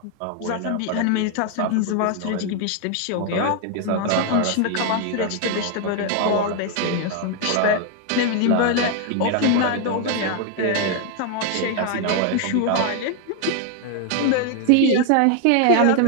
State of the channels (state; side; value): different; both; correlation 0.00